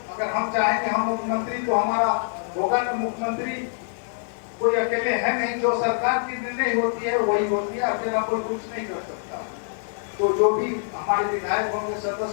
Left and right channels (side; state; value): right; silent; 58 dB below the other